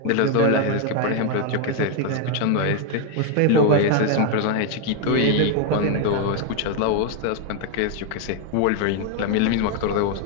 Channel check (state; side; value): different; both; correlation 0.01